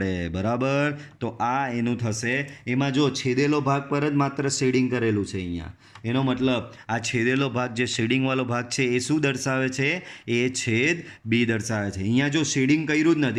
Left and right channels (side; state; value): both; identical; correlation 1.00